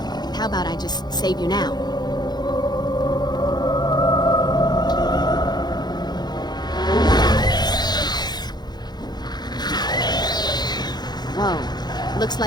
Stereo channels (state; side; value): late; right; 0.20 ms